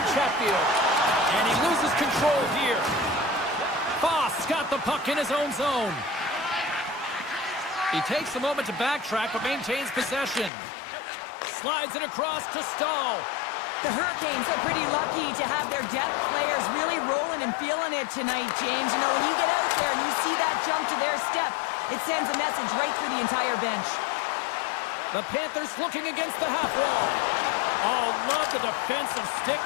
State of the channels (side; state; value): right; drops out; at 10.5 s